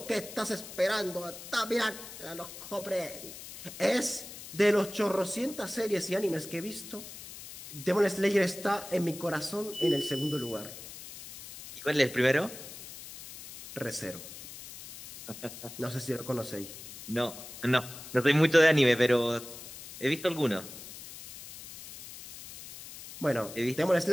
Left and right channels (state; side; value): noise; left; hiss, 13 dB below the sound